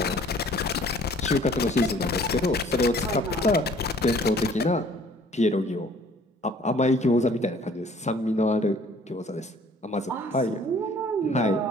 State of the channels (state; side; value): normal; both; correlation 0.55